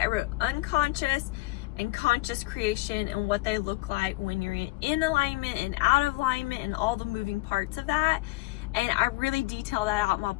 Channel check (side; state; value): right; quieter; 20.7 dB